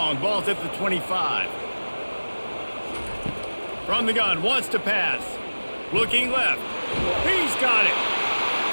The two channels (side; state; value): both; inverted; correlation -1.00